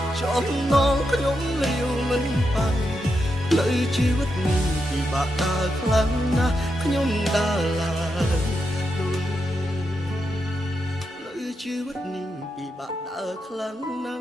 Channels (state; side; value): normal; both; correlation 0.85